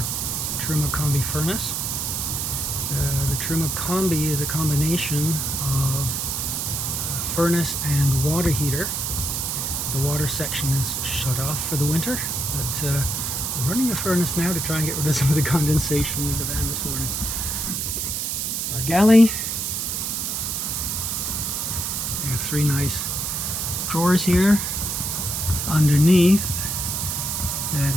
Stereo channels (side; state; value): right; noise; hiss, 1 dB below the sound